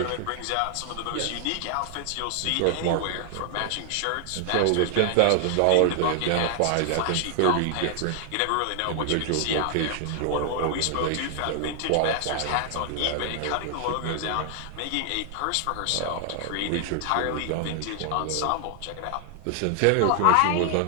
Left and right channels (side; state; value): both; different; correlation 0.00